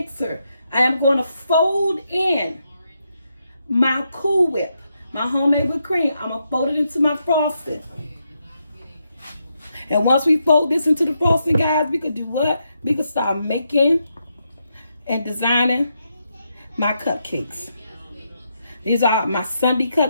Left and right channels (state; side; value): inverted; both; correlation -0.81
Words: I am going to fold in my Cool Whip, my homemade whipped cream. I'm gonna fold it into my frosting, and once we fold this into the frosting, guys, we could do what? We could start making and designing my cupcakes. These are my sundae